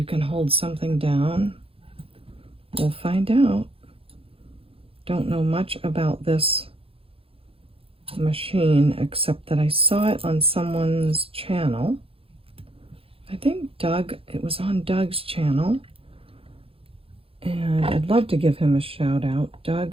can hold something down. We'll find out. Don't know much about this machine except that I saw it on someone's channel. I think Doug, it was on Doug's channel. And I'd love to give him a shout out.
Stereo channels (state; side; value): late; left; 0.27 ms